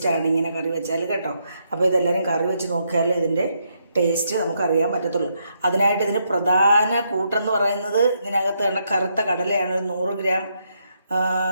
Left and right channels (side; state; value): both; inverted; correlation -0.78